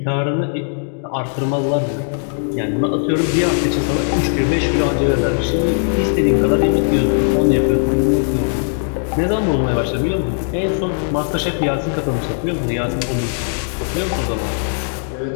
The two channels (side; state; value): right; silent; 67 dB below the other